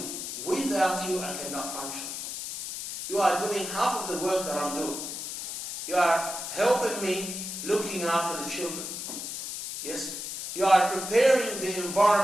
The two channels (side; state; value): left; noise; hiss, 6 dB below the sound